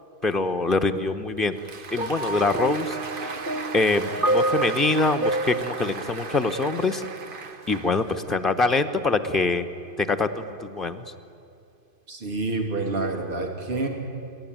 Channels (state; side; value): late; left; 2.5 ms